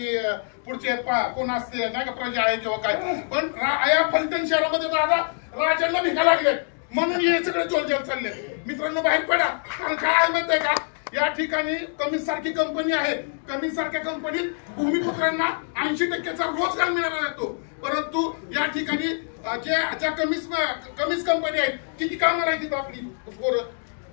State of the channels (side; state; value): right; silent; 62 dB below the other